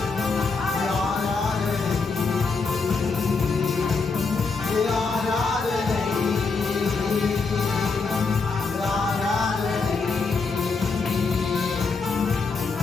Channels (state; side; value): quieter; right; 4.5 dB